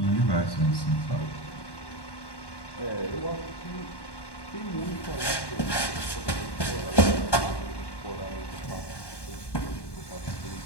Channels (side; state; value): right; late; 1.1 ms